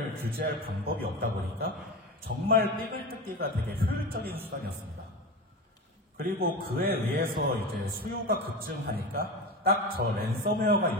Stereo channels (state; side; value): normal; both; correlation 0.25